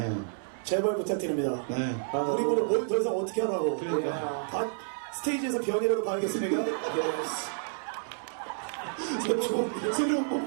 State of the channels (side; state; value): left; silent; 58 dB below the other